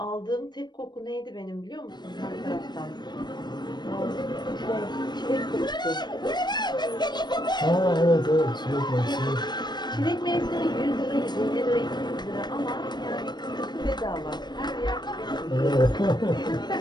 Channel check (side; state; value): right; late; 0.21 ms